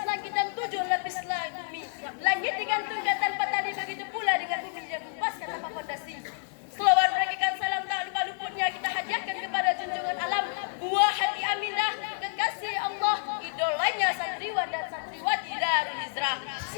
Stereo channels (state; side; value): silent; right; digital silence